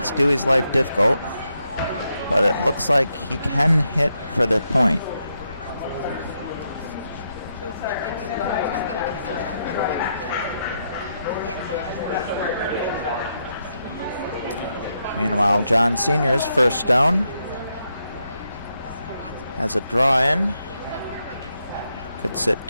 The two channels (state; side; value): inverted; both; correlation -0.81